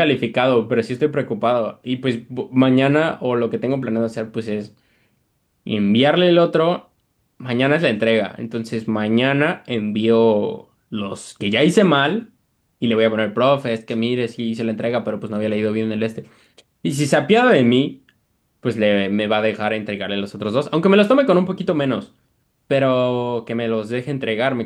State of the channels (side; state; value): both; identical; correlation 1.00